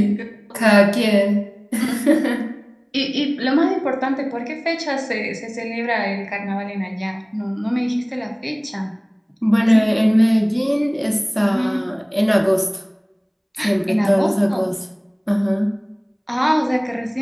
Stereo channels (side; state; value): both; identical; correlation 1.00